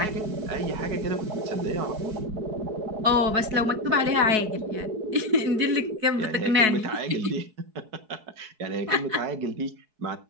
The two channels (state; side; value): late; left; 4.6 ms